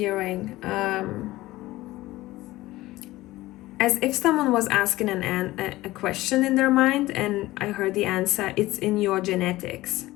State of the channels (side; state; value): right; quieter; 17.7 dB